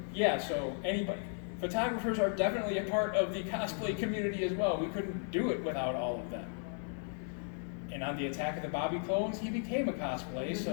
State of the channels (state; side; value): silent; right; 54 dB below the other